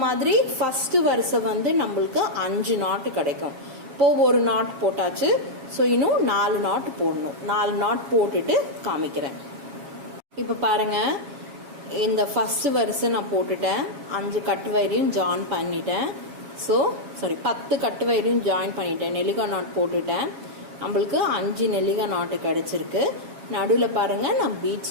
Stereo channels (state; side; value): late; left; 7.3 ms